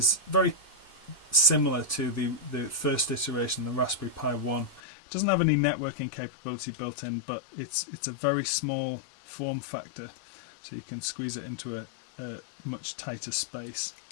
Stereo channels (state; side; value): drops out; right; at 4.8 s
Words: very similar to the first iteration, the Raspberry Pi 1. It doesn't have any networking capability built in, but it's a very small form factor, so you can squeeze it into a much tighter space.